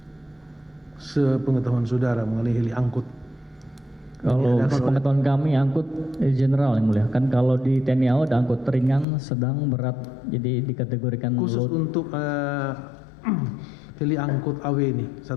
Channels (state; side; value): drops out; right; at 9.1 s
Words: Sepengetahuan saudara mengenai heli angkut. Kalau sepengetahuan kami angkut general yang mulia. Kan kalau di TNI AU ada angkut ringan, sedang, berat. Jadi dikategorikan Khusus load. untuk heli angkut AW ini